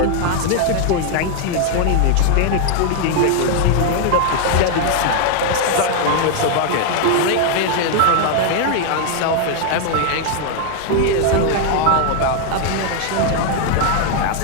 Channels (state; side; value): different; both; correlation 0.00